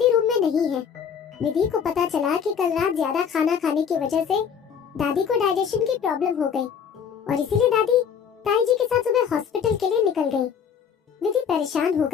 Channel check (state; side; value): quieter; right; 7.4 dB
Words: रूम में नहीं है। विधि को पता चला कि कल रात ज्यादा खाना खाने की वजह से दादी को डाइजेशन की प्रॉब्लम हो गई और इसीलिए दादी ताई जी के साथ सुबह हॉस्पिटल के लिए निकल गई। विधि परेशान हो